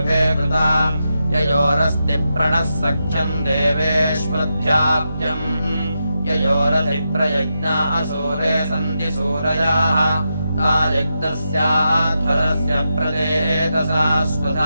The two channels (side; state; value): both; inverted; correlation -0.86